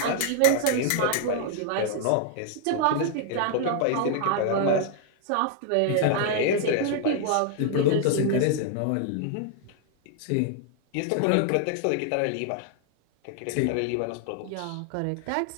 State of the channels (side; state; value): both; different; correlation 0.00